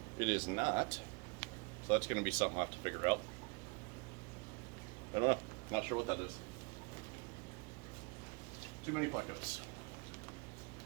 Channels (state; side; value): quieter; left; 30.5 dB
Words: It is not, so that's going to be something I have to figure out. I don't know. Not sure what that is. Too many plecos.